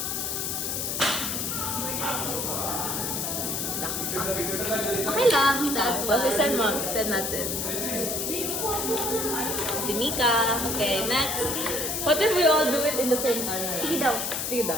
Okay lang. Tapos, send mo. Send natin. Timika. Okay, next. What if we all do it in the same time? Sige daw. Sige daw.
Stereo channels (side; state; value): left; noise; hiss, 1 dB below the sound